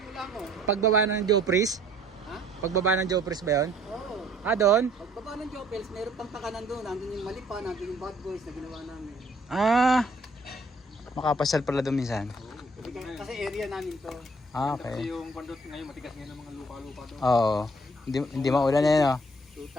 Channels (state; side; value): normal; both; correlation 0.60